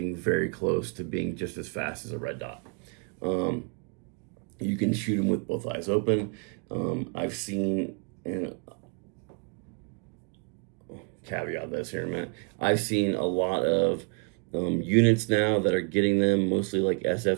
very close to being just as fast as a red dot. You can shoot them with both eyes open. I've seen, and caveat this here in a minute, I've seen a lot of units now that are getting them, mostly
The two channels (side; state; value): left; quieter; 37.9 dB